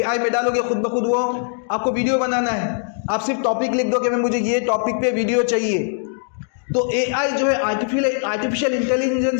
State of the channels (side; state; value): right; silent; digital silence